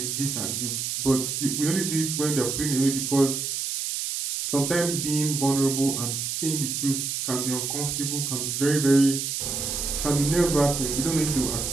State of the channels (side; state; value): right; noise; hiss, 2 dB below the sound